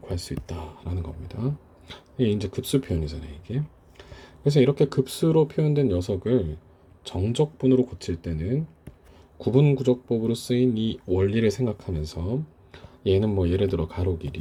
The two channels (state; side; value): identical; both; correlation 1.00